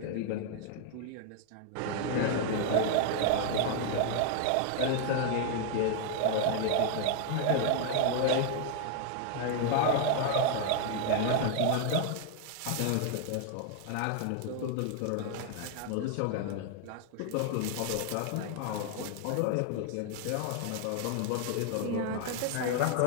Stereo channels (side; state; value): both; different; correlation 0.00